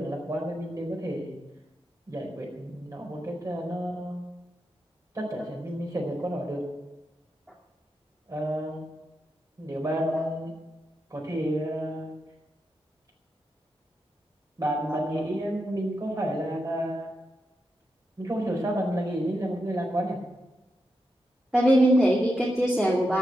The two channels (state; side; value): normal; both; correlation 0.86